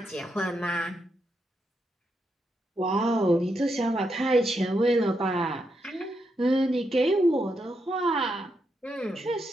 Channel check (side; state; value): both; normal; correlation 0.82